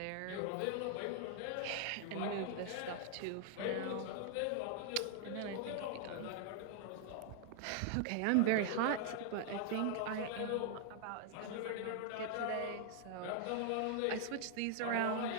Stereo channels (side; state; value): both; different; correlation 0.00